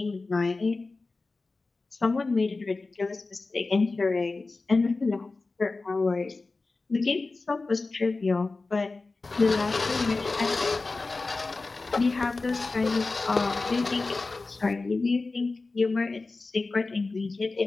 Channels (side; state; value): right; quieter; 3.6 dB